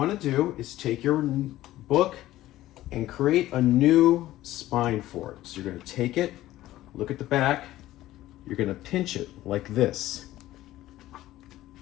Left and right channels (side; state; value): right; quieter; 15.2 dB